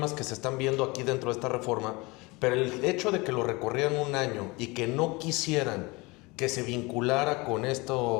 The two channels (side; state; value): right; quieter; 24.8 dB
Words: que se están viendo aquí dentro de esta reforma, pero el hecho de que lo recorrieran un año y que no quisieran que se vinculara con